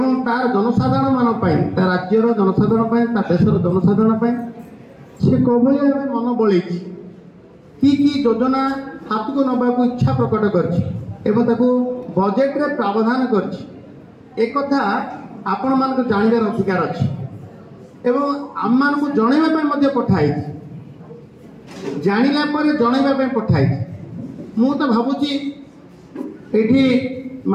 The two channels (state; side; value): identical; both; correlation 1.00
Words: तार जनसाधारण मान राज्यर जनसाधारण देशर जनसाधारण से कौन मन बल कि योजना हाथ को नवाक इच्छा प्रकट कर बजेट रे प्रावधान कर आपण मान जानवर अधिकार अच्छी एवं आम मान को जनवाई पठाई जाना जनवाई पठाई मु तो भावुची ये